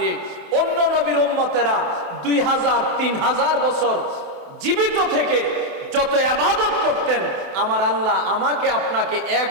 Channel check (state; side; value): late; left; 28 ms